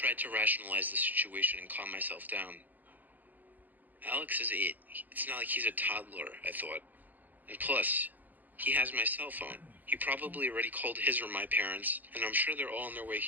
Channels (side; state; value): left; late; 0.084 ms